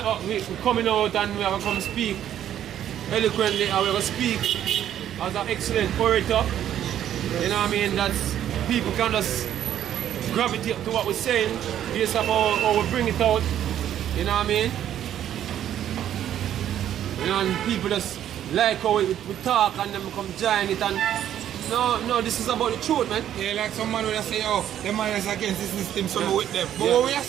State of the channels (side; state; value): left; quieter; 10.9 dB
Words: we're coming out and we're going to come speak eloquently and we're going to speak as an excellent orator. You know what I mean? That's people can just gravitate to what we're saying based on how we bring it out. You know what I mean? You know, and people just like how we talk and then come join it and no, this is about the truth, man. Yeah, like some man would say, oh, the man is against this system, so we're with them. But what we are